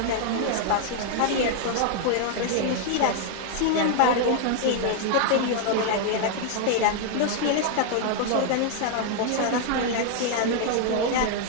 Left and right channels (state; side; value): different; both; correlation 0.00